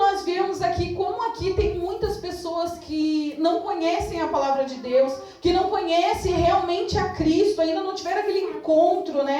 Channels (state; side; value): identical; both; correlation 1.00